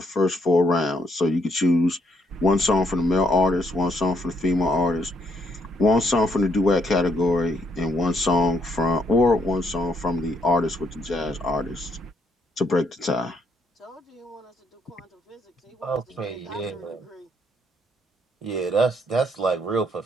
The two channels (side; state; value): both; normal; correlation 0.72